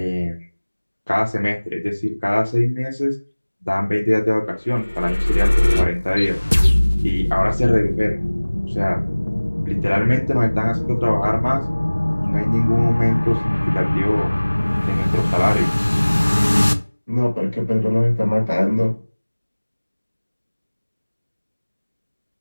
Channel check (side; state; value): both; inverted; correlation -1.00